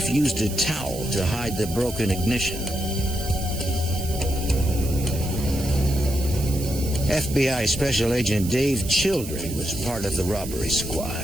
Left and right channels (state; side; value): noise; right; hiss, 11 dB below the sound